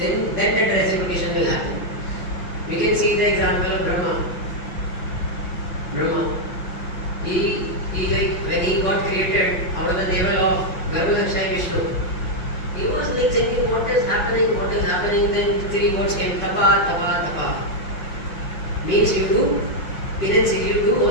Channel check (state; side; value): late; right; 5.5 ms